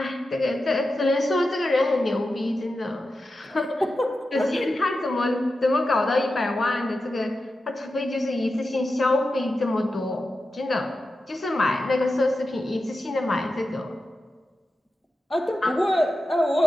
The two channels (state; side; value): normal; both; correlation 0.91